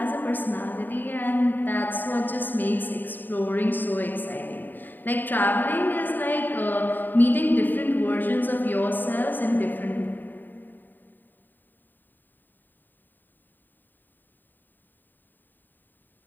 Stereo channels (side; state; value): right; late; 0.090 ms